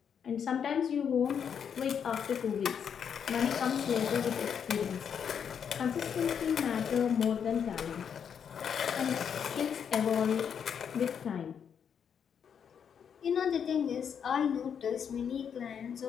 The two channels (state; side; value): quieter; right; 7.6 dB